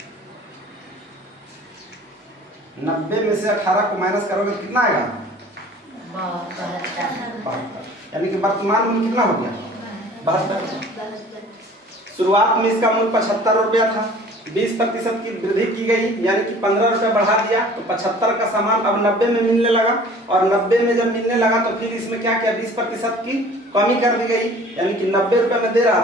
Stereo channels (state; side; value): normal; both; correlation 0.48